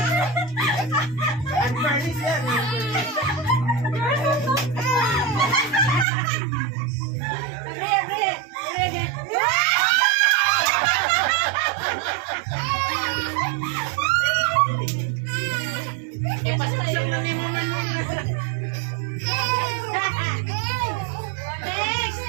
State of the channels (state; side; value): drops out; left; at 6.1 s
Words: Unfurnished yan. Ipasaksak na ni Mama Nuna.